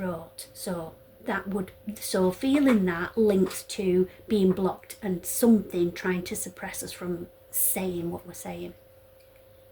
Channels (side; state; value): both; identical; correlation 1.00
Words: So feeling that links to being blocked and something trying to suppress us from saying what we're saying.